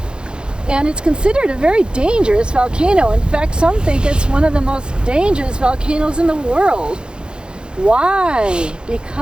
and it's considered a very dangerous volcano. In fact, some think it's one of the most dangerous volcanoes in the world. Why?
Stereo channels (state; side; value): late; left; 0.050 ms